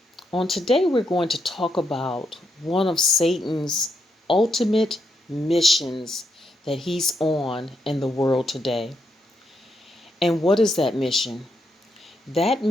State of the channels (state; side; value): normal; both; correlation 0.80